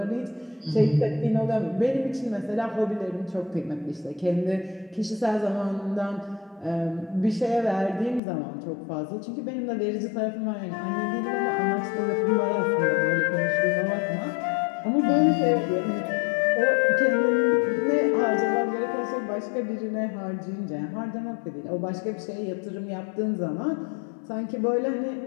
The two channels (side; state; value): right; drops out; at 8.2 s